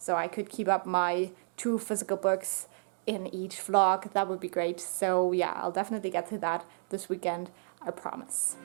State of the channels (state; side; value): silent; left; digital silence